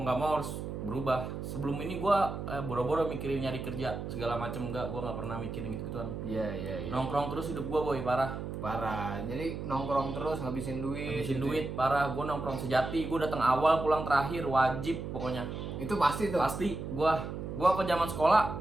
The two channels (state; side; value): noise; right; hum, 6 dB below the sound